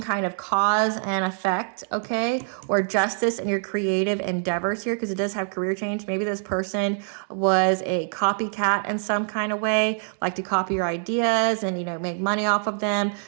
kind of cause and effect, okay, or justice in your creative endeavors here, because it does have career change. Maybe this person was a copycat in some kind of way, like to copy your ideas and, make money off of them.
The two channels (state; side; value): silent; left; digital silence